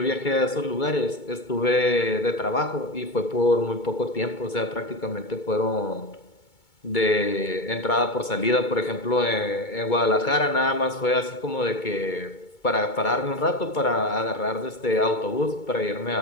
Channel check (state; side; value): late; right; 2.2 ms